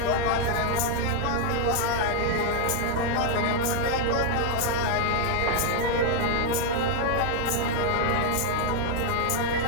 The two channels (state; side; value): different; both; correlation 0.00